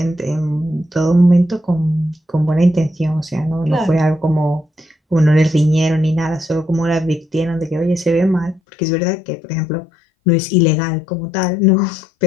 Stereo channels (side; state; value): right; drops out; at 8.6 s